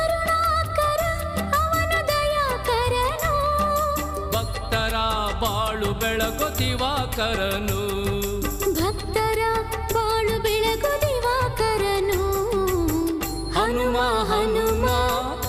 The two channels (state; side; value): identical; both; correlation 1.00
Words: ಬಾಳು ಬೆಳಗು ದಿವಾಕರನು, ಭಕ್ತರ ಬಾಳು ಬೆಳಗು ದಿವಾಕರನು. ಹನುಮ ಹನುಮ